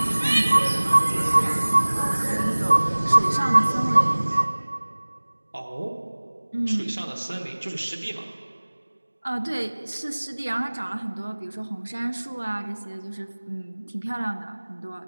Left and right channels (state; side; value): inverted; both; correlation -1.00